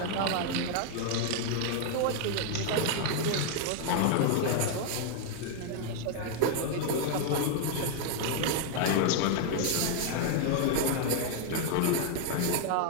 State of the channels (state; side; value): different; both; correlation 0.00